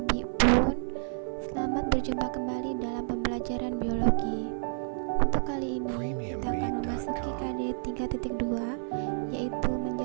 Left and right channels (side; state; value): left; silent; 58 dB below the other